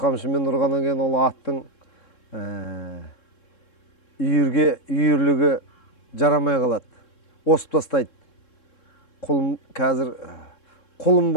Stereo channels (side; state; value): right; late; 3.7 ms